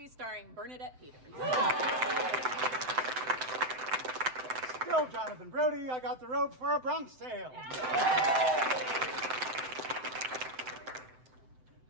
starring Bernadette Peters. Still Jonathan Brody. I got the robe for A Bronx Tale.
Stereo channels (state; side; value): late; left; 7.8 ms